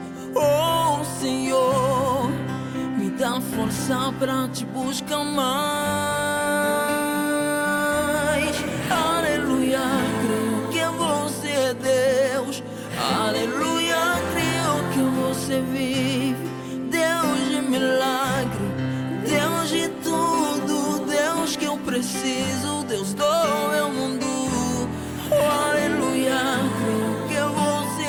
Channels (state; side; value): identical; both; correlation 1.00